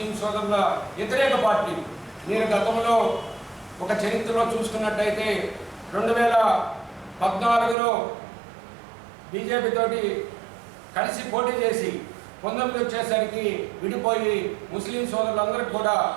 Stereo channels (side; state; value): left; drops out; at 7.8 s